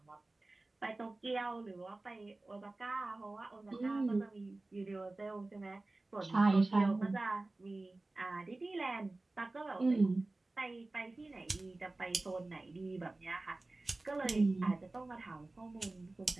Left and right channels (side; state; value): left; quieter; 3.0 dB